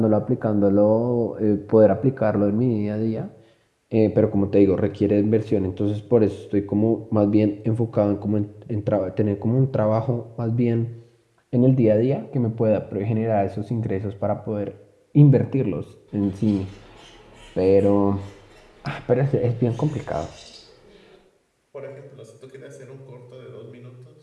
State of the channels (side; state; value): both; identical; correlation 1.00